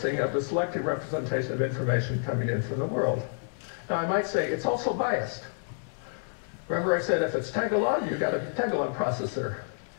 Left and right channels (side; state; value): right; silent; digital silence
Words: of the selective representation of information coming in from the world. Now I might say it's also biased. Remember I said if it's Tagalog, you've got a Tagalog processor.